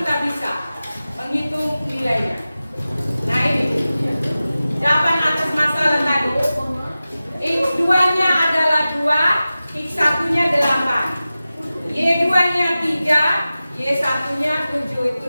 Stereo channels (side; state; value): both; inverted; correlation -0.95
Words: bisa menghitung nilainya. Nah ini jawaban atas masalah tadi. X2-nya adalah 2, X1-nya 8, Y2-nya 3, Y1-nya 7.